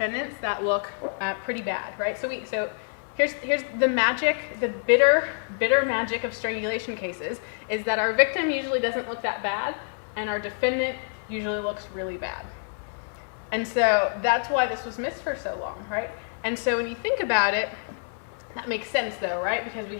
that look pretty bad, right? So here's the magic, the bitter magic of strangulation cases is that our victim usually doesn't look that bad and our defendant usually looks really bad. And so that's why this was missed for so long, right? And so when you think about it, that makes sense though, right? Because we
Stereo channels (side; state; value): right; silent; digital silence